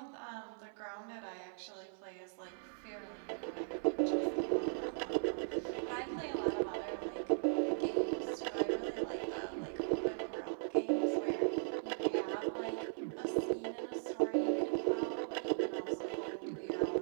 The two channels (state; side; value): silent; left; 52 dB below the other